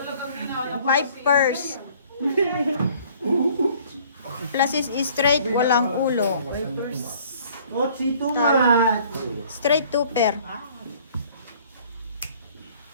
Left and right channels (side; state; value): both; inverted; correlation -0.55